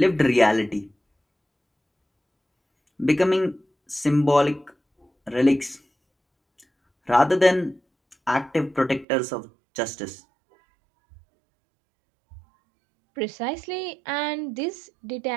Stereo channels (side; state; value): left; drops out; at 9.1 s